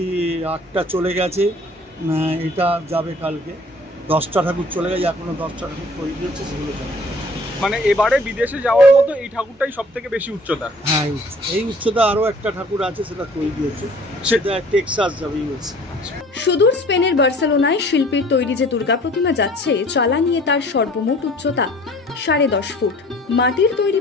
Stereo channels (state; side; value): normal; both; correlation 0.52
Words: 8টা চলে গেছে, এটা যাবে কালকে। 10টা ঠাকুর চলে গেছে, এখনো 10টা ঠাকুর তৈরি হচ্ছে, সেগুলো যাবে। মানে এবারে বিদেশে যাওয়ার মতো এই ঠাকুরটাই সব থেকে বেশি উচ্চতা। হ্যাঁ, এই উচ্চতা আরো একটা ঠাকুর আছে, সেটা তৈরি হচ্ছে, সেটা টেক্সাস যাবে ইউএসএ। সুদূর স্পেনের বার্সেলোনায় শিল্পীর তৈরি যে দুর্গা প্রতিমা যাচ্ছে, চালা নিয়ে তার সর্বমোট উচ্চতা 10.5 ফুট। মাটির তৈরি